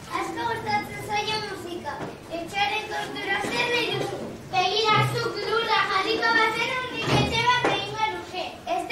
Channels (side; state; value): both; identical; correlation 1.00